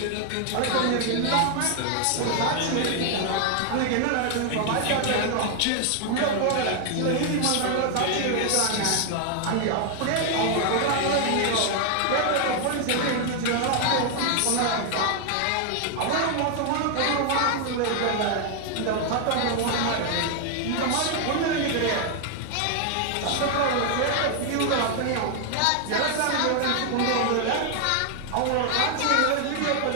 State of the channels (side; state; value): both; different; correlation 0.00